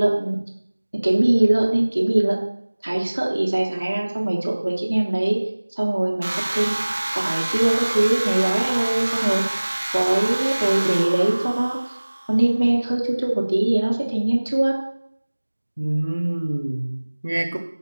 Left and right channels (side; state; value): both; inverted; correlation -1.00